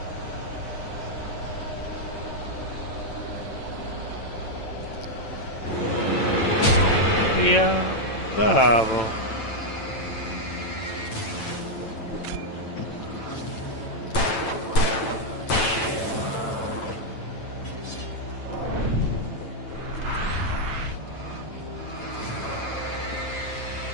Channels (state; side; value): late; right; 9.0 ms